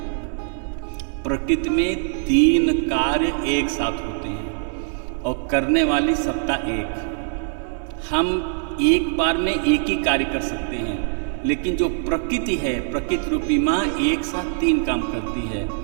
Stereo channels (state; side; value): silent; left; 64 dB below the other